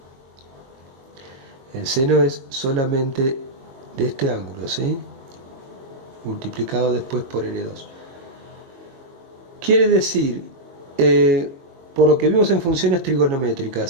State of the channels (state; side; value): late; left; 22 ms